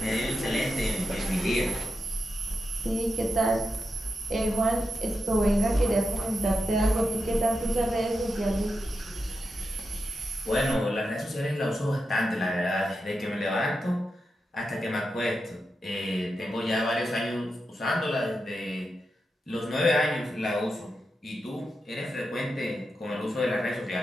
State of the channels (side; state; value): both; normal; correlation 0.88